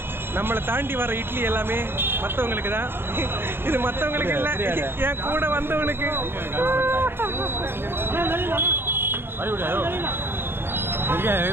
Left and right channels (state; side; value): late; left; 0.11 ms